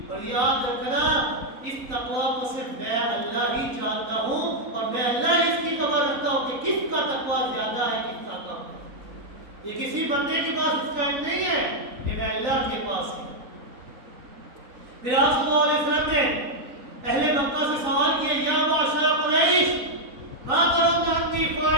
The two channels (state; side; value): late; left; 4.0 ms